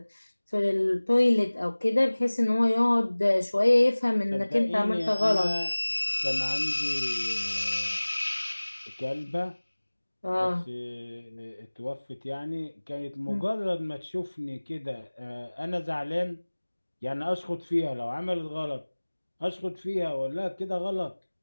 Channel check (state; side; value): inverted; both; correlation -1.00